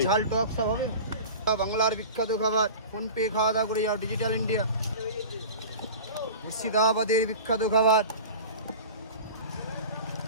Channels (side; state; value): both; inverted; correlation -0.35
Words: ঝাল টক সব হবে। বাংলার বিখ্যাত খাবার, ফোনপে খাওয়া দাওয়া করে যাও, ডিজিটাল ইন্ডিয়া। মুর্শিদাবাদের বিখ্যাত খাবার,